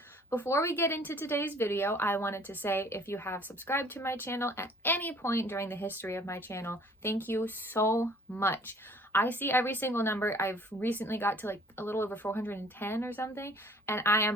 Before we get into today's video, I wanted to say if you have subscribed to my channel at any point during the history of my channel, thank you so much. I see every single number. I've recently got to like a little over 410 or something, and I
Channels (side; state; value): both; normal; correlation 0.54